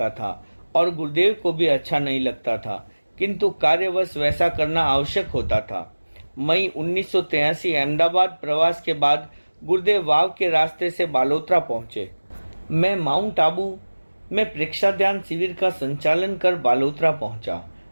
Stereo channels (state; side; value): inverted; both; correlation -1.00